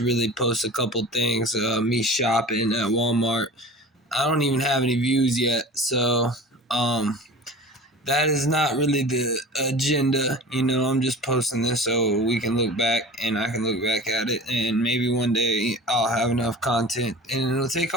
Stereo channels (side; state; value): both; normal; correlation 0.38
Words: post a couple things. Me shopping at Walmart. I don't even have any views yet. So, um, that is not really the agenda. I'm just posting this so we can look back and I can look back at it. And maybe one day I'll have enough content and it'll take